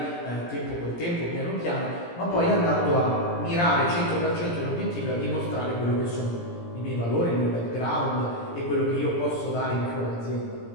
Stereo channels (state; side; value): late; right; 17 ms